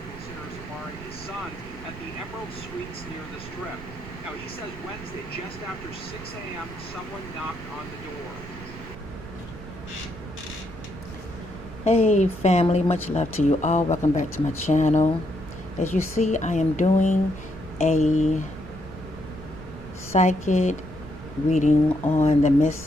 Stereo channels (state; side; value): noise; right; rumble, 14 dB below the sound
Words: considers Amari his son, at the Emerald Suites near the Strip. Now, he says Wednesday, just after 6 a.m., someone knocked on the door. Hey family, much love to you all. Welcome back to my channel. As you see, I am doing a psychic reading on the